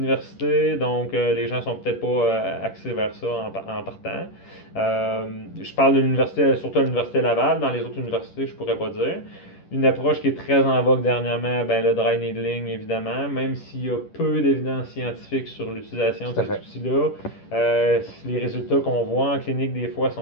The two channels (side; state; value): right; late; 10 ms